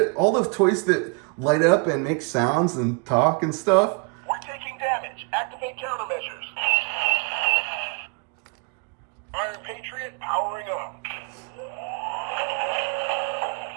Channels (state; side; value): quieter; left; 34.6 dB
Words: light up and make sounds and talk and stuff. We're taking damage. Activate countermeasures. Iron Patriot powering